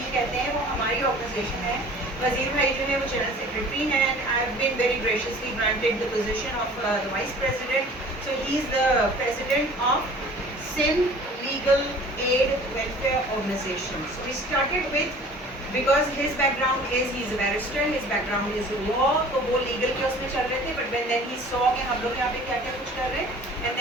कहते हैं, वो हमारी ऑर्गेनाइजेशन है। वज़ीर भाई जो है वो जनरल सेक्रेटरी हैं, and I have been very graciously granted the position of the vice president, so he is the president of Sindh legal aid welfare organisation. So we started with, because his background is he's a barrister, his background is law, तो वो legal के उसमें चल रहे थे, but when then he saw कि हम लोग यहाँ पे क्या क्या कुछ कर रहे हैं, and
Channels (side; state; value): both; normal; correlation 0.47